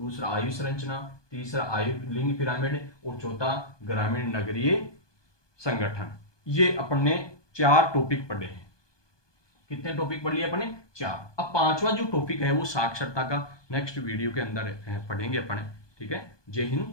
आयु संरचना, तीसरा आयु लिंग पिरामिड, और चौथा ग्रामीण नगरीय संगठन। ये अपन ने 4 टॉपिक पढ़े हैं। कितने टॉपिक पढ़ लिए अपन ने? 4। अब 5वां जो टॉपिक है वो साक्षरता का नेक्स्ट वीडियो के अंदर पढ़ेंगे अपन। ठीक है, जय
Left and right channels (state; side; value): late; right; 1.2 ms